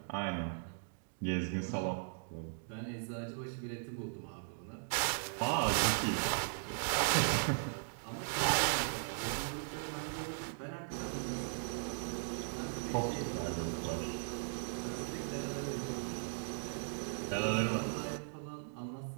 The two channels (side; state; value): left; silent; digital silence